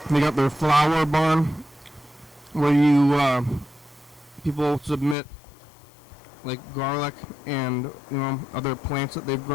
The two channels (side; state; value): right; drops out; at 5.2 s